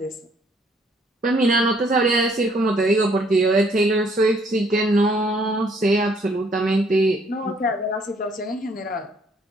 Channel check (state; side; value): normal; both; correlation 0.65